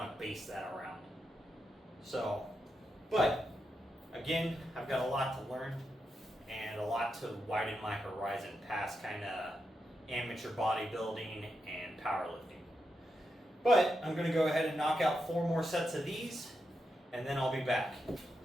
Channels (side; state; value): both; normal; correlation 0.85